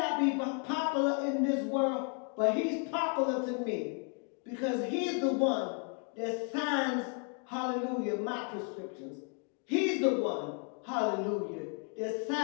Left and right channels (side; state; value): right; quieter; 37.7 dB